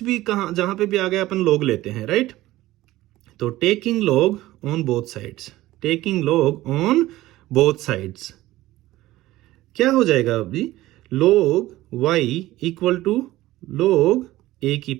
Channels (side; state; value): left; quieter; 16.7 dB